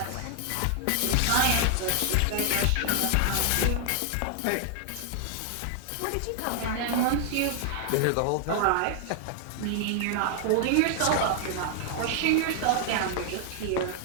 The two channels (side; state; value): both; different; correlation 0.00